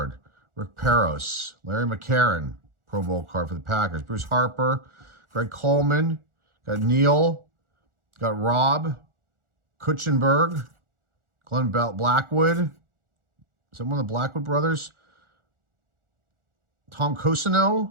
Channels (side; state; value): left; late; 1.4 ms